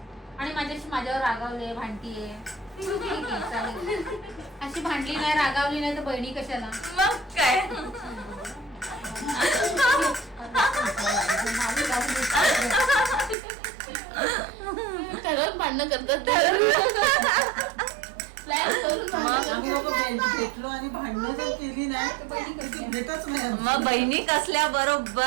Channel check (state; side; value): drops out; left; at 13.4 s